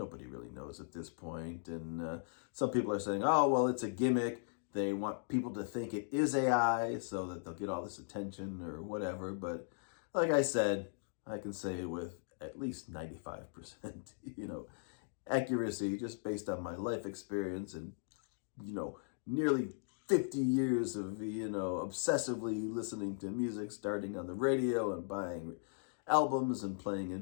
really knows at this point. And some people are saying, oh, well, it's a gimmick. They want people to think it is AI so that they'll get all this attention or whatever. But like I said, I can say with at least 95%, accuracy just based on my life experience and, nearly 50 years of, obsessively listening to music, starting on the radio and buying albums and playing in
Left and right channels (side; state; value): right; silent; digital silence